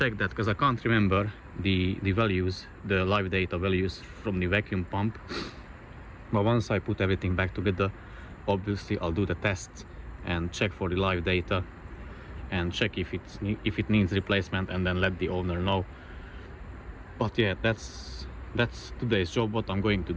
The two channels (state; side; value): identical; both; correlation 1.00